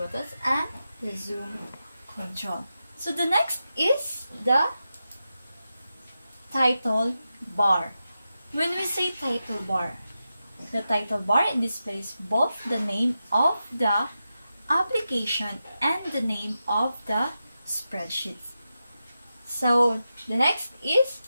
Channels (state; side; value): inverted; both; correlation -0.90